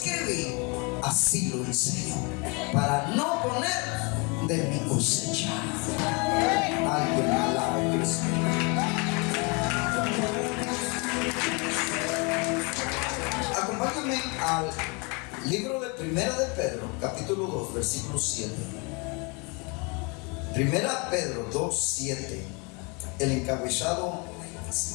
así lo enseño, para no poner de mi cosecha. Alguien alabe a Cristo. Acompáñame al libro de Primera de Pedro, capítulo 2, versículo 7. Primera Pedro 2, 7. El encabezado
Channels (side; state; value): right; quieter; 31.0 dB